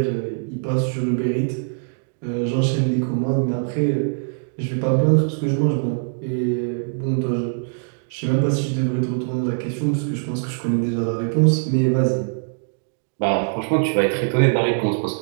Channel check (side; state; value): left; silent; digital silence